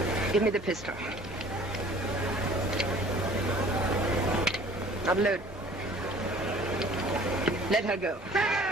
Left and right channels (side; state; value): both; normal; correlation 0.50